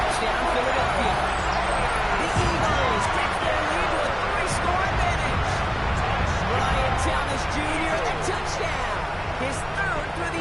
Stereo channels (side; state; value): both; identical; correlation 1.00